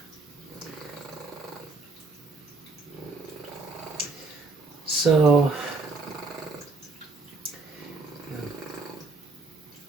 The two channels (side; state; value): left; quieter; 3.7 dB